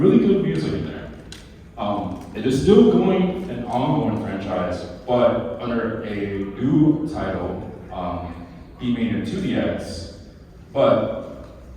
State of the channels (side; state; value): both; identical; correlation 1.00